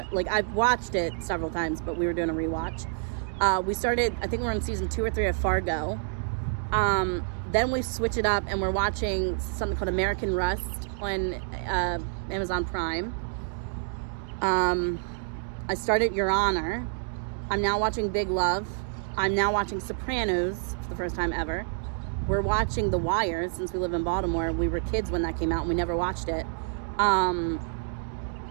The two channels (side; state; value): left; silent; digital silence